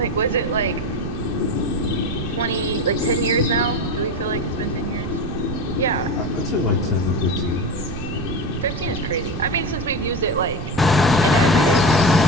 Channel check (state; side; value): noise; right; rumble, 8 dB below the sound